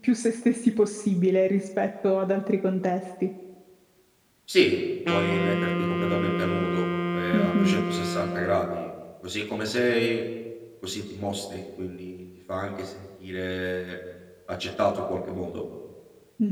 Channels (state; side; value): identical; both; correlation 1.00